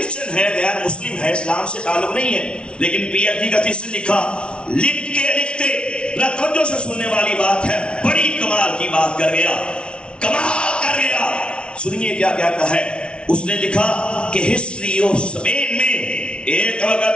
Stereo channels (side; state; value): right; late; 0.058 ms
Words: ہے، غیر مسلم ہے، اسلام سے تعلق نہیں ہے، لیکن پی ایچ ڈی کا تھیسس لکھا۔ لکھتے توجہ سے سننے والی بات ہے، بڑی کمال کی بات کر گیا، کمال کر گیا۔ سنیے کیا کہتا ہے۔ اس نے لکھا کہ ہسٹری آف اسپین میں ایک